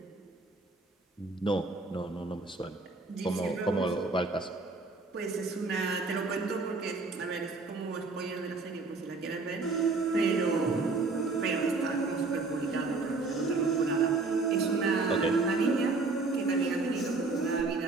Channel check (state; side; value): quieter; left; 3.7 dB